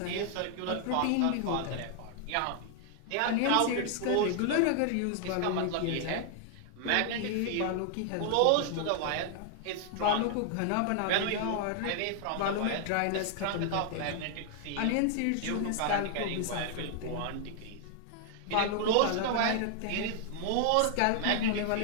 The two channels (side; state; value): both; different; correlation 0.00